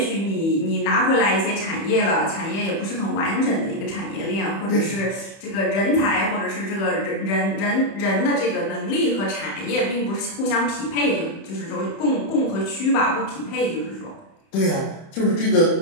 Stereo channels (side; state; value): right; late; 30 ms